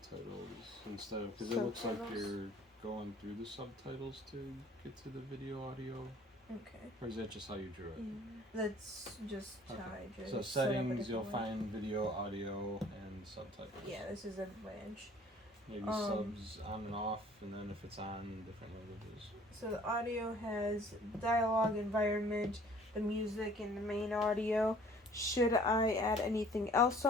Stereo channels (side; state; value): both; normal; correlation 0.53